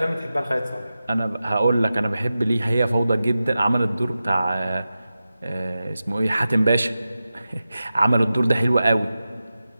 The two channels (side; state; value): both; inverted; correlation -0.93